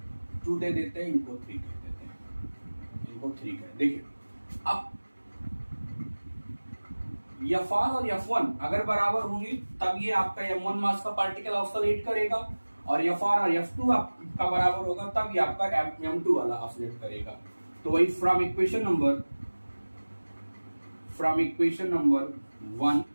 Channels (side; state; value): both; inverted; correlation -1.00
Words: 2 दे देते हैं, इनको 3 कह देते हैं, इनको 3 कह। देखिए अब Fr और F1 अगर बराबर होंगे तब ये आपका m1 मास का पार्टिकल ऑसिलेट करेगा, और Fr और F2 आपका बराबर होगा तब ये आपका m2 वाला ऑसिलेट करेगा। तो वही फ्रॉम इक्वेशन नंबर 1,